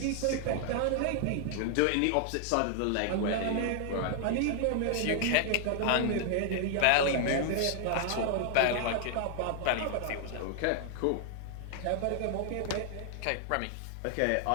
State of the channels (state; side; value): different; both; correlation 0.00